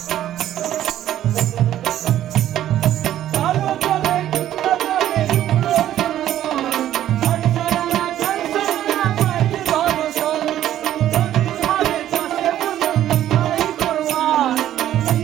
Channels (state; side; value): quieter; left; 12.1 dB